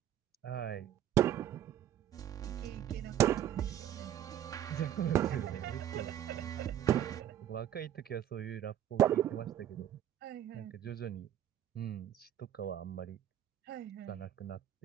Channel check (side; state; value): left; quieter; 11.0 dB